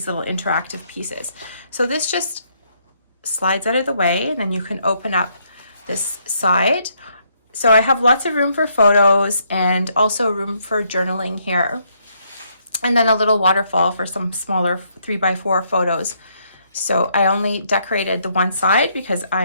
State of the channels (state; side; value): inverted; both; correlation -0.72